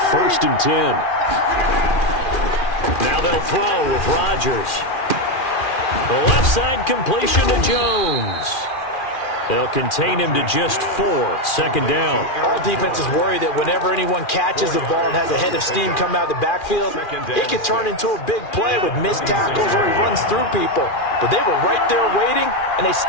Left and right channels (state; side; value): late; right; 2.4 ms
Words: 1st and 10. Now they'll throw with Rodgers. The left side completion to Jones. They'll contain him to just 4. 2nd down. All defenses worry that whenever anyone catches the ball and has a head of steam come out of the backfield, it could turn into a big play with missed tackles or he runs through people. But they were right there waiting, and they